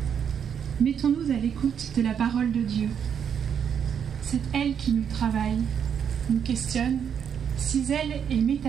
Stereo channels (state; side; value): quieter; left; 7.9 dB